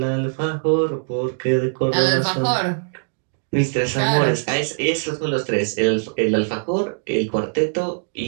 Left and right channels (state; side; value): silent; left; digital silence